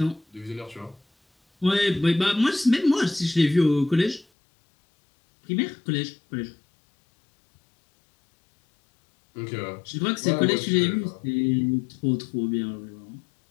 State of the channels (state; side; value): drops out; right; at 4.2 s